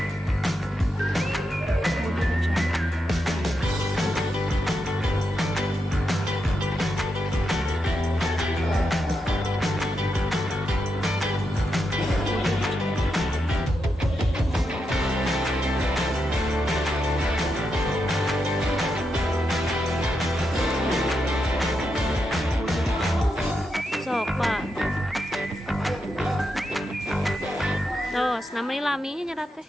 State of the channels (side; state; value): both; normal; correlation 0.85